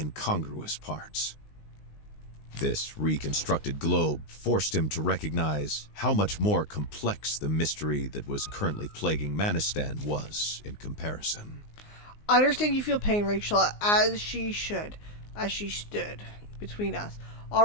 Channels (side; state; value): right; late; 19 ms